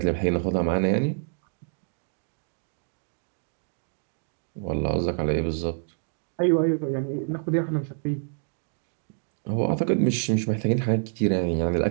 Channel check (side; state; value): left; silent; 60 dB below the other